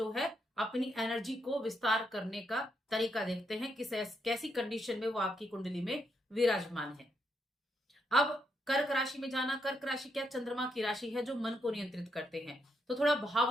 है अपनी एनर्जी को विस्तार करने का तरीका देखते हैं, कैसी कंडीशन में वो आपकी कुंडली में विराजमान है। अब कर्क राशि में जाना, कर्क राशि क्या चंद्रमा की राशि है जो मन को नियंत्रित करते हैं, तो थोड़ा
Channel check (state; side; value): normal; both; correlation 0.79